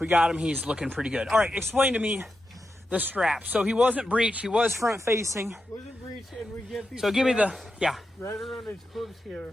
got him. He's looking pretty good. All right, explain to me the strap. So he wasn't breech. He was front facing. Wasn't breech, and we get these. So give me the, yeah. Right around his hooves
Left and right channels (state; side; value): normal; both; correlation 0.88